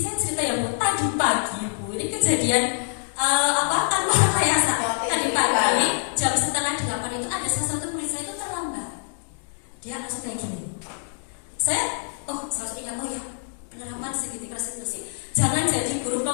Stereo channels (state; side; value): silent; right; 61 dB below the other